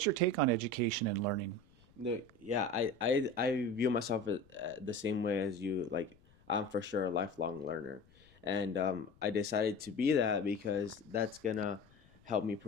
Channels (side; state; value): left; noise; rumble, 29 dB below the sound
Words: your take on education and learning? Yeah, I view myself the same way as you. Like, I'm for sure a lifelong learner. And I decided to be that because that's gonna help me